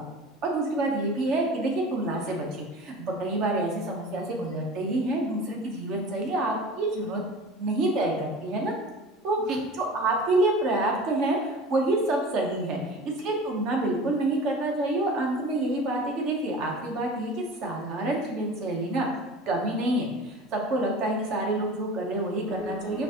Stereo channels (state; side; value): normal; both; correlation 0.38